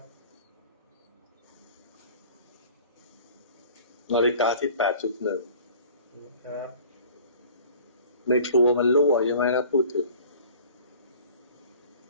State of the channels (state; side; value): inverted; both; correlation -0.46